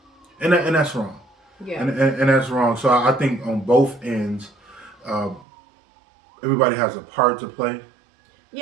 that's wrong. Yeah. And that's wrong. So I think on both ends, uh, everybody has a part to play.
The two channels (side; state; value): left; drops out; at 5.5 s